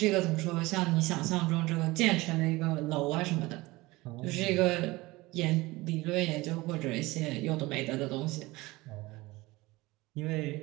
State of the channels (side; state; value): left; quieter; 20.9 dB